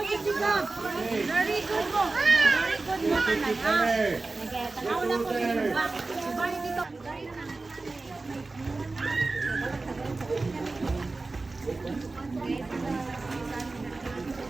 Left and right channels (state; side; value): quieter; left; 3.5 dB